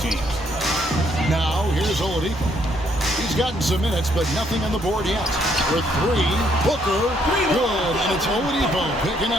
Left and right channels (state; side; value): normal; both; correlation 0.70